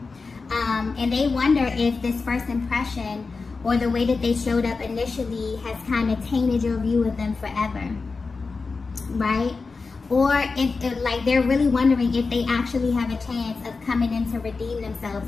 And they wonder if this first impression or the way that they showed up initially has kind of tainted your view of them forever, right? Or if like they're really wondering if they actually have a chance of coming in to redeem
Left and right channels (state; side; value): quieter; right; 4.3 dB